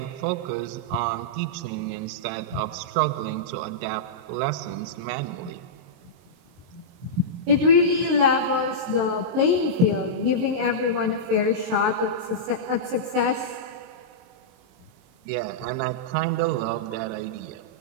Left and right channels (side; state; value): left; late; 23 ms